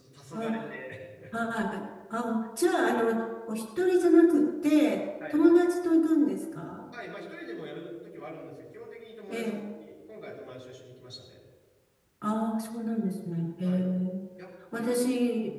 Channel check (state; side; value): identical; both; correlation 1.00